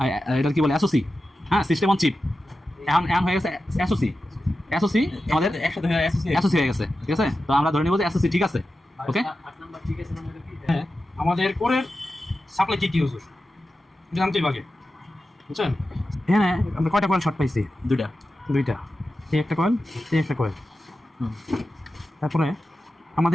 এটা কি বলে এসওসি, হ্যাঁ, সিস্টেম অন চিপ। এখন হয়ে গেছে এসওসি, এসওসি আমাদের এসওসি হয়ে গেছে, ঠিক আছে? তো আমরা ধরে নিব যে এসওসি ঠিক আছে, ওকে? 8 নাম্বার ঠিক আছে না? হ্যাঁ, আমাদের কোরের সাপ্লাই কি ইউজ হয় জানতেই বাকি, বুঝছেন? হ্যাঁ, আমরা কয়টা কয়েল শর্ট পাইছি? দুইটা। এই একটা কয়েল, এই একটা কয়েল। তারপরে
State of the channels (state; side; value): normal; both; correlation 0.92